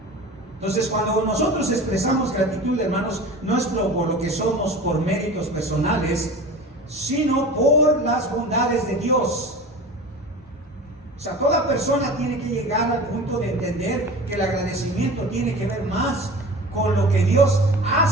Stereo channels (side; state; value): both; normal; correlation 0.36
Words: Entonces, cuando nosotros expresamos gratitud, hermanos, no es por lo que somos, por méritos personales, sino por las bondades de Dios. O sea, toda persona tiene que llegar al punto de entender que el agradecimiento tiene que ver más con lo que Dios